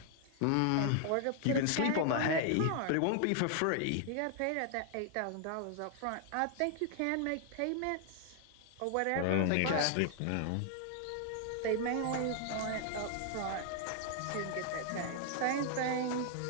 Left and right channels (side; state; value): both; different; correlation 0.00